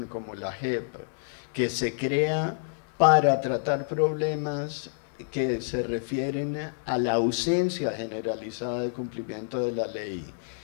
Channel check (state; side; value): silent; right; digital silence